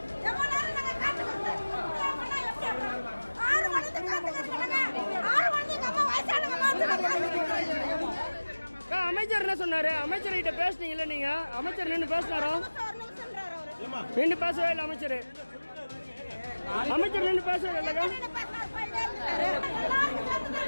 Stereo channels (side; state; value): both; inverted; correlation -1.00